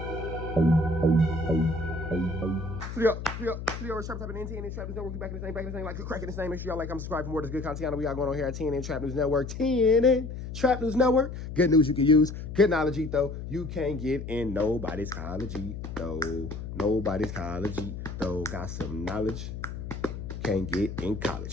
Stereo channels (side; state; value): left; noise; hum, 8 dB below the sound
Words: Rich Trapper typing in TNN Trap News Network. We back in the same, like cracking this name. Make sure y'all like, comment, subscribe for more of this good content we got going on here at TNN Trap News Network. TNN Trap News Network. Good news you can use. Good knowledge, though. You can't get in nobody's college, though. Nobody's college, though. Got some knowledge. Can't get in